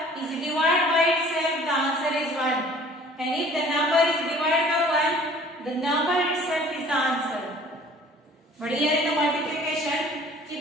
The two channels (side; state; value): both; normal; correlation 0.51